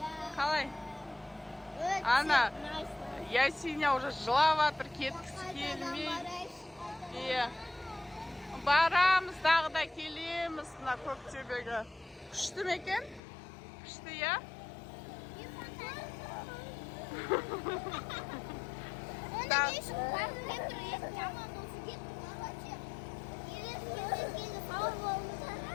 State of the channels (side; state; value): right; drops out; at 13.2 s